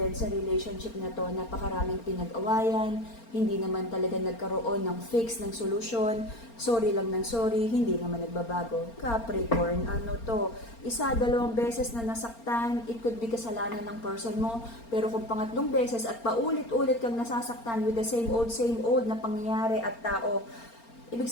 sa relationship na to, napakaraming pinag-awayan, hindi naman talaga nagkaroon ng fix, ng solusyon, sorry lang ng sorry, hindi naman nagbabago. Capricorn, ano to? Isa, dalawang beses na nasaktan, it could be kasalanan ng person mo, pero kung pangatlong beses at paulit-ulit kang nasasaktan with the same old na pangyayari at tao, ibig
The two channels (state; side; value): late; right; 4.4 ms